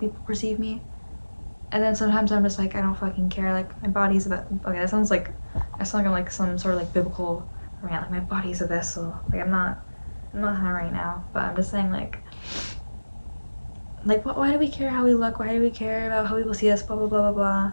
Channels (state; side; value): inverted; both; correlation -1.00